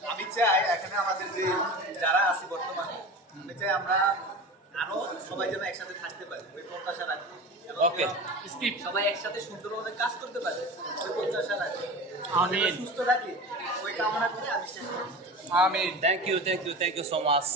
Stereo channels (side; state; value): both; normal; correlation 0.32